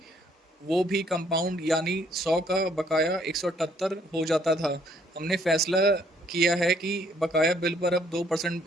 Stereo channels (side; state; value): both; normal; correlation 0.66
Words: वो भी कंपाउंड यानी 100 का बकाया 178 हो जाता था। हमने फैसला किया है कि बकाया बिल पर अब